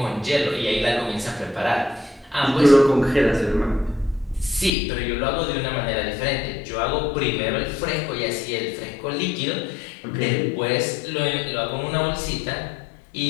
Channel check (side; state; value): right; drops out; at 4.7 s